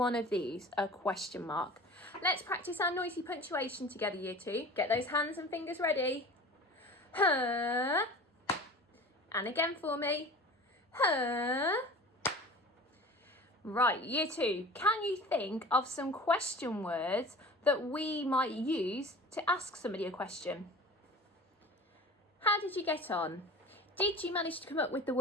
of these, a question mark. Let's practice our noisy punctuation together, Year 2. Get those hands and fingers ready. Huh. And again for me. Huh. Right, Year 2, can you think of some question words that we might use to ask somebody a question? How did you get on? Did you manage to come up with the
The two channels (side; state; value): both; normal; correlation 0.39